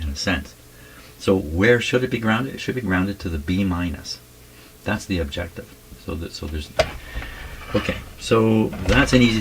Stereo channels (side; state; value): both; identical; correlation 1.00